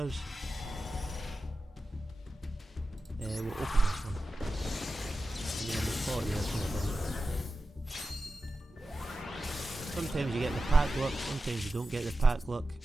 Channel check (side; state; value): both; normal; correlation 0.93